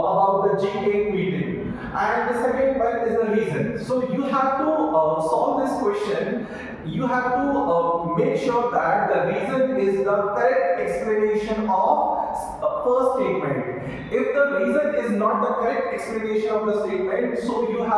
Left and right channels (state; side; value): identical; both; correlation 1.00